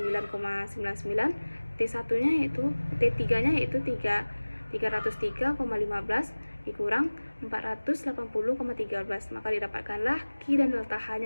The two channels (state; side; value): inverted; both; correlation -1.00